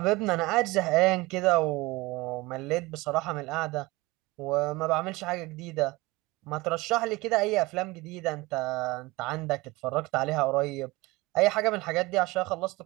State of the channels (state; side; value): quieter; left; 21.9 dB